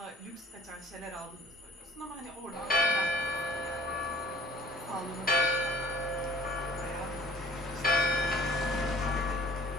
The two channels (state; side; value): normal; both; correlation 0.51